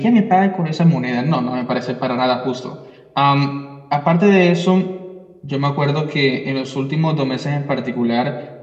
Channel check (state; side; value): identical; both; correlation 1.00